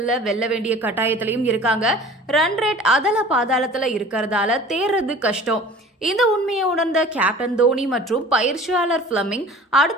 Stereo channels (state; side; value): normal; both; correlation 0.44